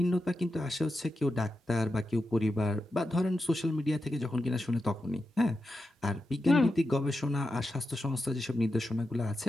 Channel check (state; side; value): normal; both; correlation 0.89